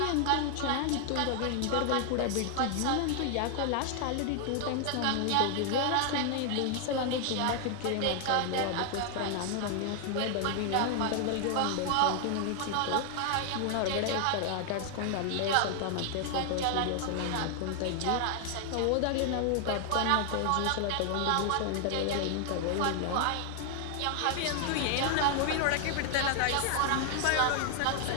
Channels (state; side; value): different; both; correlation 0.00